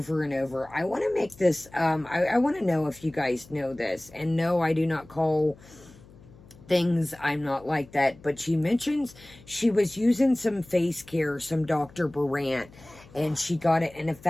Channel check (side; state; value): left; noise; hum, 23 dB below the sound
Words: and over. I want to make this, I want to know if you guys know this. And no, I do not call things, I'm not like that. But she mentions she was using some face care, some Dr. Brandt, and she got it in a